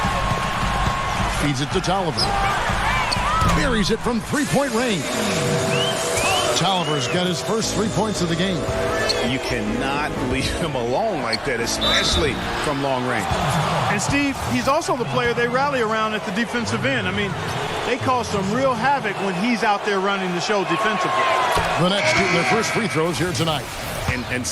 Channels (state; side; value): identical; both; correlation 1.00